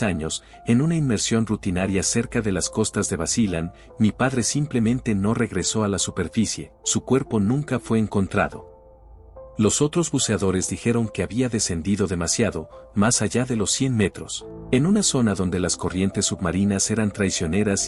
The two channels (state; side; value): identical; both; correlation 1.00